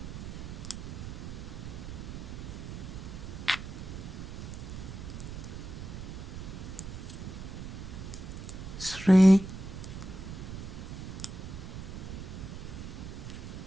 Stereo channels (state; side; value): noise; right; rumble, 8 dB below the sound